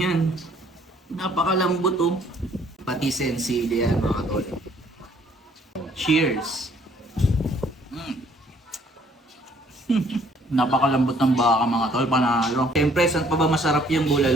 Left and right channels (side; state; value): both; normal; correlation 0.62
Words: Napakalambot oh. Patis and sili yan mga tol. Cheers. Napakalambot ng baka mga tol, panalo. Siyempre, saan pa ba masarap yung